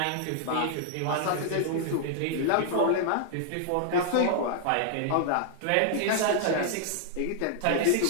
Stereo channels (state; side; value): different; both; correlation -0.01